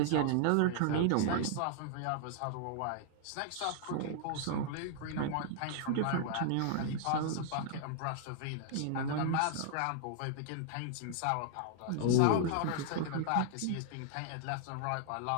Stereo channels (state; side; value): different; both; correlation -0.01